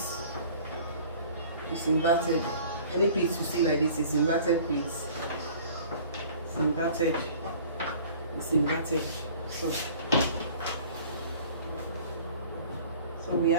It's inverted. Any pleats you see like this is inverted pleats. It's inverted. It's inverted. So we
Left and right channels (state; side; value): inverted; both; correlation -0.48